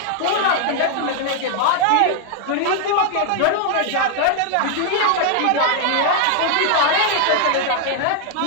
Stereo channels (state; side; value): different; both; correlation 0.00